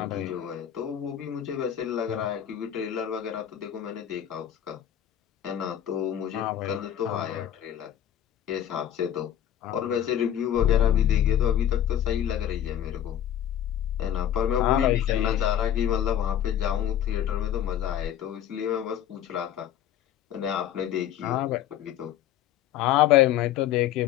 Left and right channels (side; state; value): right; quieter; 10.8 dB